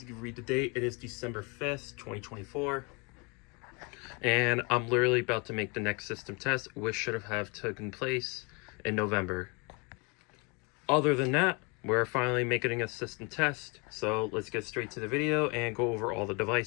you can read the date, it is December 5th, 2024. And I'm literally about to make the next system test, which should have taken place in November. Other than that, we're finally making a system test. So let's get straight to the video and go over all the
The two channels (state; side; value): quieter; right; 30.9 dB